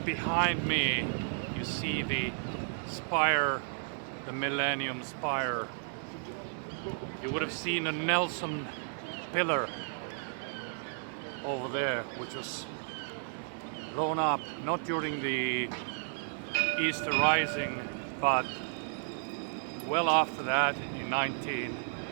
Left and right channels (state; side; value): silent; left; digital silence